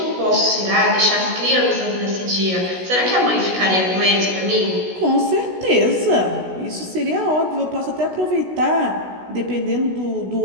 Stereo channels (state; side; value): late; left; 16 ms